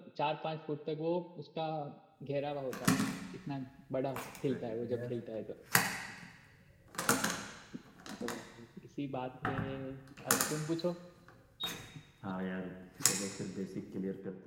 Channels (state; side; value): identical; both; correlation 1.00